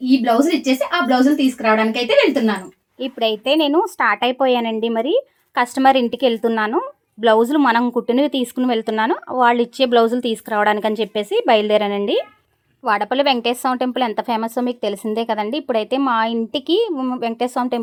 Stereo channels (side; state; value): both; identical; correlation 1.00